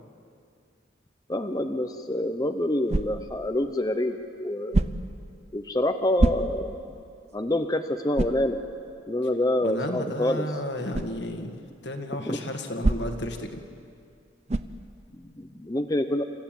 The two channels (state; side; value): normal; both; correlation 0.73